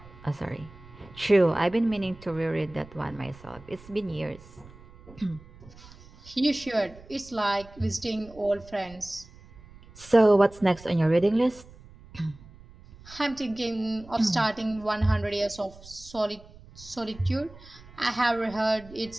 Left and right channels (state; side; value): noise; right; rumble, 21 dB below the sound